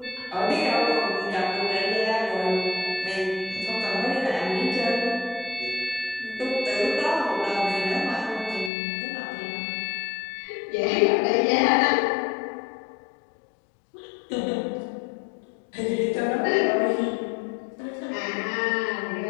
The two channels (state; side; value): drops out; right; at 8.7 s